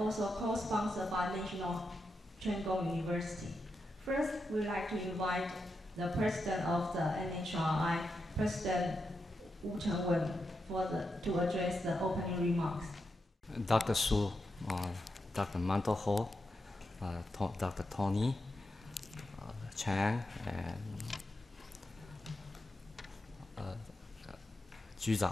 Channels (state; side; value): normal; both; correlation 0.87